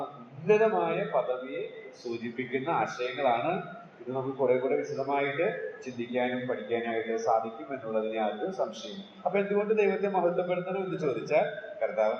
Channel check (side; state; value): both; identical; correlation 1.00